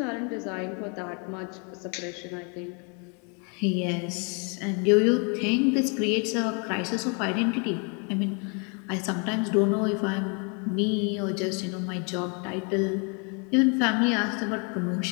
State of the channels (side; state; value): right; quieter; 35.7 dB